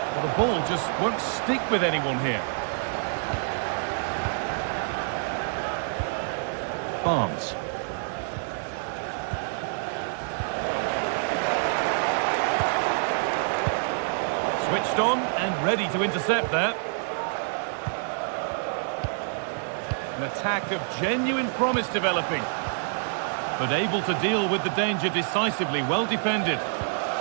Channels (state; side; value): silent; left; 58 dB below the other